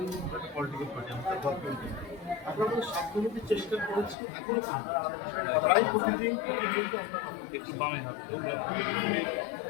পলিটিক্যাল পার্টি, আমরা গভর্নমেন্ট। আমরা আমাদের সাধ্যমতো চেষ্টা করেছি, এখনো প্রায় প্রতিদিন আমরা একটু বামে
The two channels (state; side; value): drops out; right; at 4.2 s